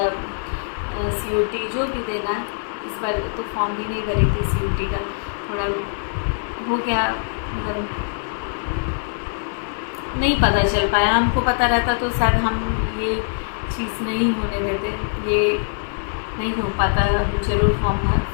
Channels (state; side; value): silent; right; digital silence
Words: COT जो भी देना है, इस बार तो फॉर्म भी नहीं भरी थी CUT का, थोड़ा हो गया, मतलब नहीं पता चल पाया। हमको पता रहता तो शायद हम ये चीज़ नहीं होने देते, ये नहीं हो पाता, हम जरूर फॉर्म